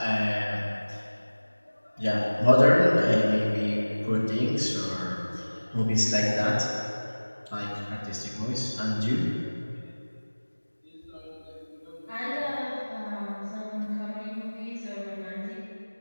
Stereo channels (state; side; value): inverted; both; correlation -1.00